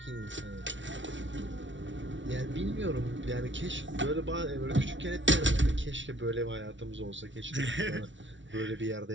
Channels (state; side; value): late; left; 0.55 ms